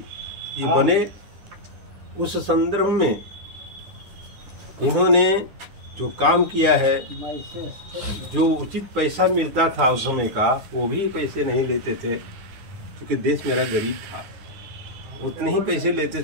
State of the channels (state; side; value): late; left; 10 ms